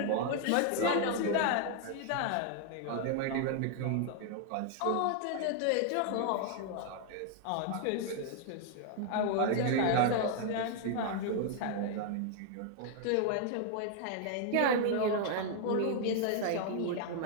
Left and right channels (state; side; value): different; both; correlation 0.00